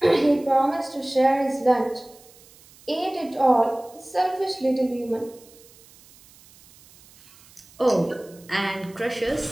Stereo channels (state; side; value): noise; right; hiss, 25 dB below the sound